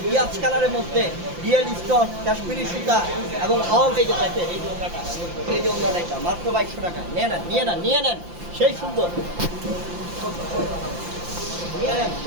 পিয়াজ কালারের মধ্যে রিয়েল স্টোন, কাশ্মীরি সুতা এবং অল। এই যে দেখেন, এই যে ওনাটা, এই যে ওনাটা, এটা মাত্র 2200 টাকা। নিয়ে নেন, নিয়ে নেন, নিয়ে নেন, সেই সুন্দর, নিয়ে নেন,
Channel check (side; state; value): left; late; 5.8 ms